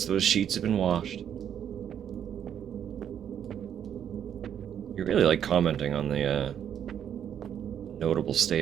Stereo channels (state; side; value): quieter; left; 9.1 dB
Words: those sheets have been washed. You really like commenting on the notable